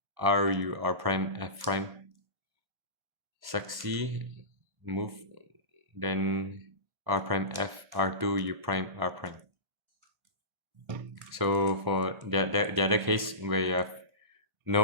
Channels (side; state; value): left; late; 1.0 ms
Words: R U R prime F prime, succeed, move, then R prime F R2 U prime R prime. So for the other case where you have